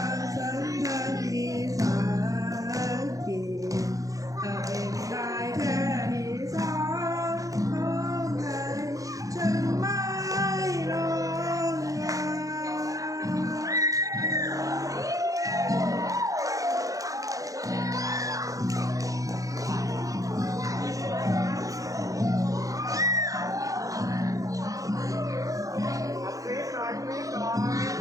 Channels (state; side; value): late; left; 0.17 ms